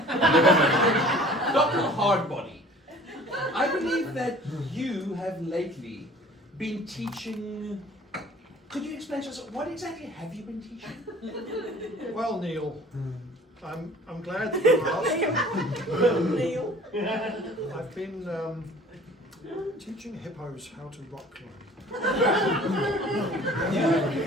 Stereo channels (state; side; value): normal; both; correlation 0.49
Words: Dr. Hardbody, I believe that you have lately been teaching. Could you explain to us what exactly have you been teaching? Well, Neil, I'm glad that you asked. Neil. I've been teaching hippos how to rock climb. You've been